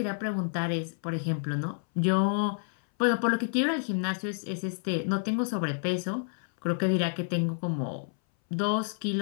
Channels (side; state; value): right; silent; 58 dB below the other